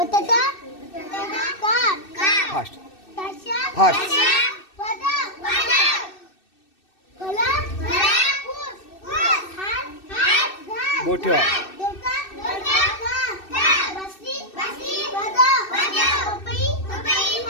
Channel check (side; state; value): right; late; 2.6 ms